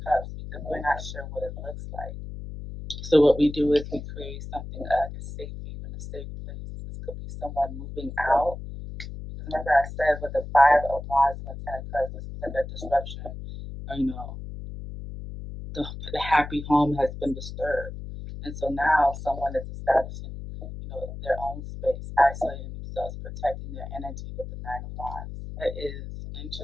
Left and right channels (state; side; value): noise; left; hum, 10 dB below the sound